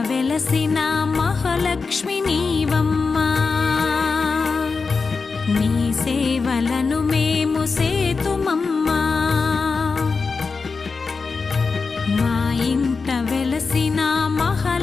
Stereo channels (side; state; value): right; quieter; 4.6 dB